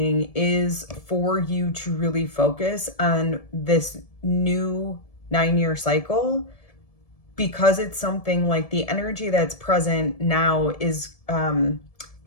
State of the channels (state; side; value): late; right; 1.7 ms